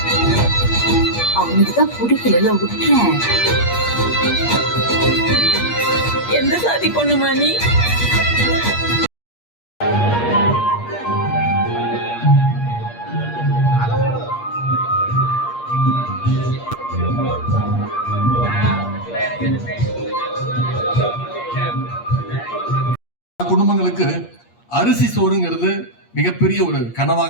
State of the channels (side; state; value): right; late; 8.5 ms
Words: அவனுக்குதான் பிடிக்கல விட்டுறேன். எந்த சாதி பொண்ணுமா நீ? குடும்பங்களுக்கு அரிசி சோறுங்கிறது மிகப்பெரிய ஒரு